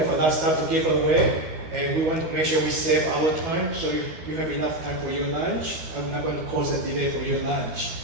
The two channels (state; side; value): late; left; 12 ms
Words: a lot of stuff to give away, and we want to make sure we save our time, so you have enough time for your lunch. I'm not going to cause a delay for your lunch.